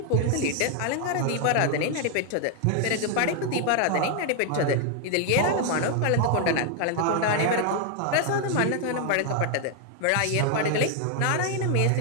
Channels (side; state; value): both; different; correlation 0.00